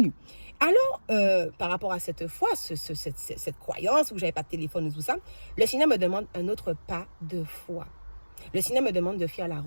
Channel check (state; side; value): inverted; both; correlation -1.00